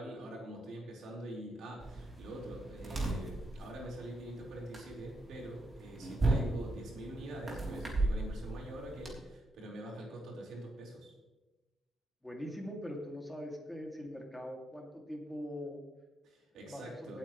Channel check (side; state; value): both; normal; correlation 0.82